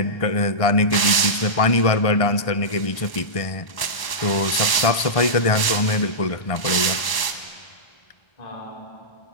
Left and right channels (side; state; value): right; late; 1.1 ms